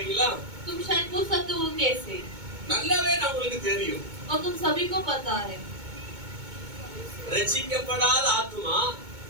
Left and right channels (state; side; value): late; left; 2.2 ms